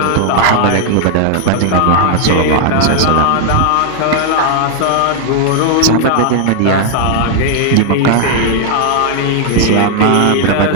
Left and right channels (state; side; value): different; both; correlation 0.00